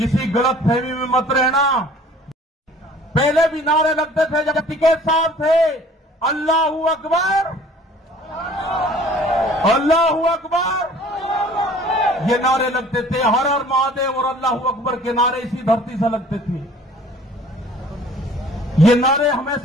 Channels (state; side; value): normal; both; correlation 0.51